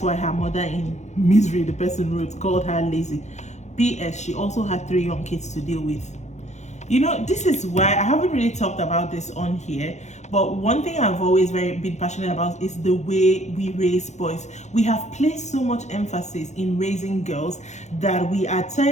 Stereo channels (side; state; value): right; late; 0.33 ms